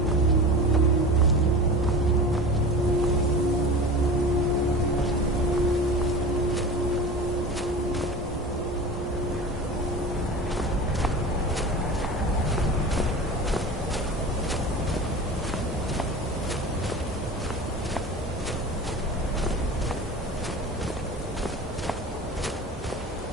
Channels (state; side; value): normal; both; correlation 0.33